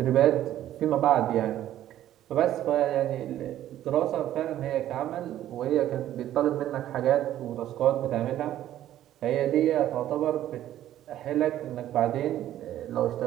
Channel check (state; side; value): quieter; left; 12.5 dB